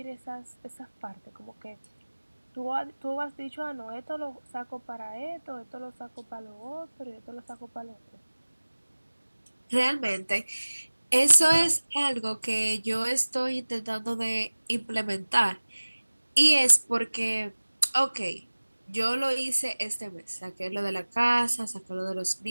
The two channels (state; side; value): inverted; both; correlation -1.00